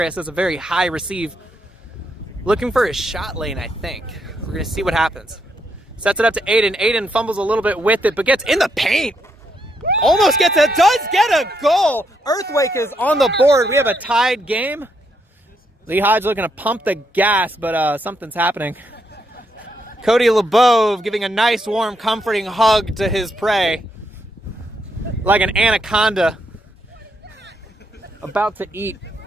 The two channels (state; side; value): normal; both; correlation 0.78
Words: That's a very high receive. Looking for his shot lane, I think. We're going to see what happens. Sets it up to Aiden. Aiden fumbles a little bit with it, but gets in the paint. Almost gets it. Does get a goal. Earthquake is on the board. We have a tied game. Lee Hodge looking to pump the gas, but something's happening. Cody LeBeau giving a nice, warm, comforting hug to his prey. Like an anaconda about to eat.